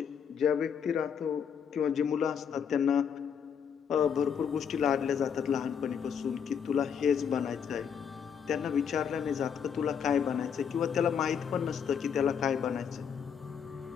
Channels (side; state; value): right; quieter; 7.4 dB